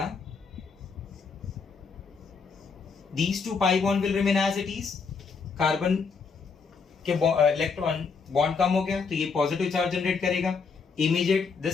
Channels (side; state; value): right; quieter; 5.2 dB